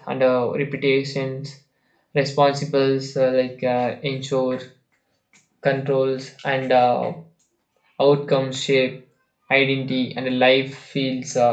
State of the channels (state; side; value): identical; both; correlation 1.00